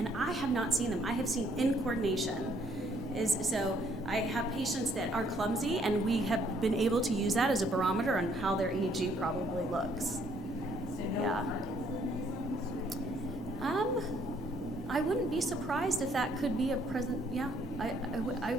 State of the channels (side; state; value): both; normal; correlation 0.66